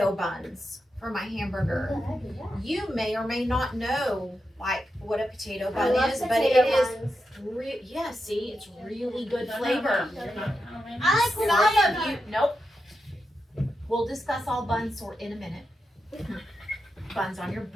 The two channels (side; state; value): both; normal; correlation 0.87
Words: buns for my hamburger. You may or may not know like what a potato bun is, but it is see, it's really good flavor. I like Some of you, nope. We'll discuss all buns in a minute. Buns on your